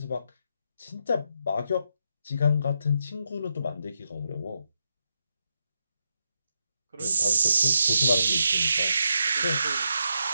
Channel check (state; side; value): inverted; both; correlation -0.83